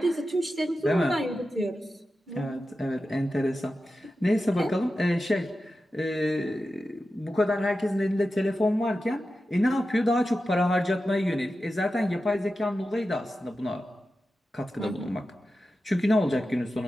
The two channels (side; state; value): both; normal; correlation 0.92